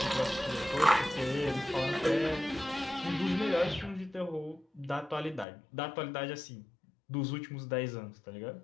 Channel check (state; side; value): drops out; right; at 5.5 s